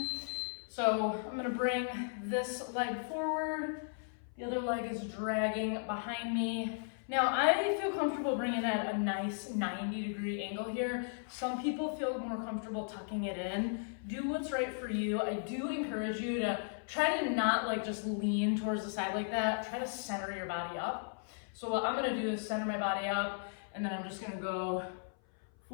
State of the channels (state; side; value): silent; right; 54 dB below the other